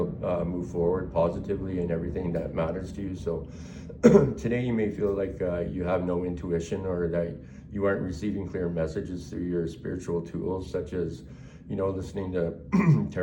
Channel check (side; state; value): both; identical; correlation 1.00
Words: move forward positively in everything that matters to you. So today you may feel like you have no intuition, or that you aren't receiving clear messages through your spiritual tools, such as, listening to